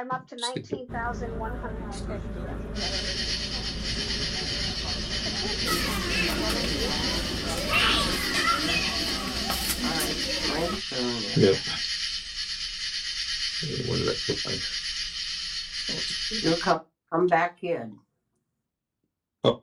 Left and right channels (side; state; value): both; identical; correlation 1.00